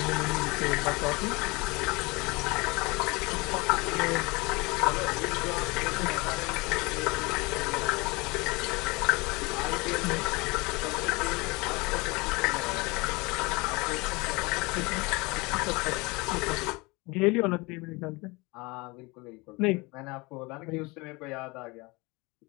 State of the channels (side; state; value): right; quieter; 25.4 dB